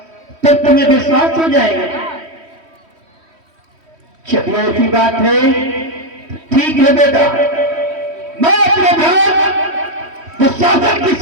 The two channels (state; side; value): late; left; 3.1 ms